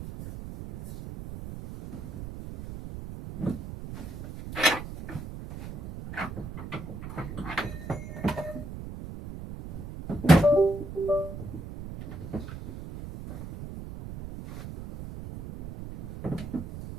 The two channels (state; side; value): noise; right; rumble, 9 dB below the sound